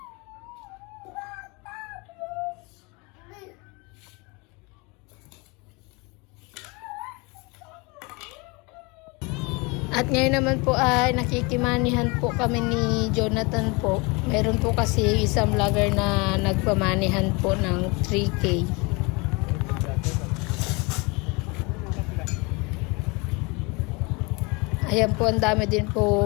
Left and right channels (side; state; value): right; quieter; 27.7 dB